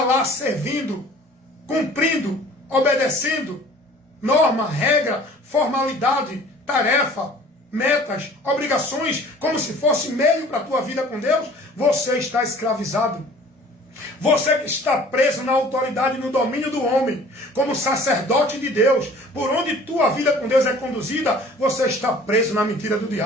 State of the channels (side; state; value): both; normal; correlation 0.49